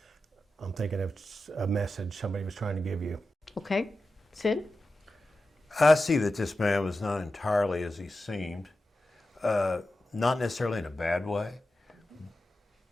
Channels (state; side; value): normal; both; correlation 0.92